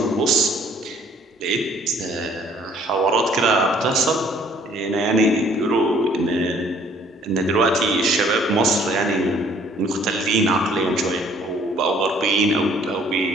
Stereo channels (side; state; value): both; normal; correlation 0.58